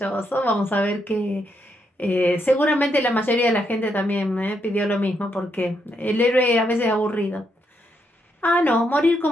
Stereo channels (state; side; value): normal; both; correlation 0.79